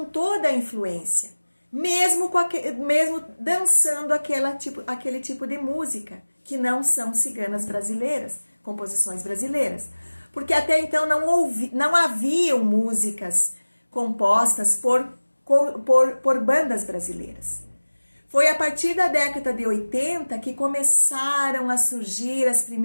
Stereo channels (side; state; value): both; inverted; correlation -1.00